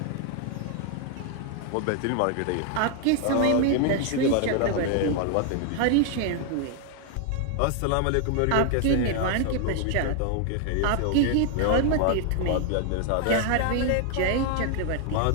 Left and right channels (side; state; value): both; different; correlation 0.00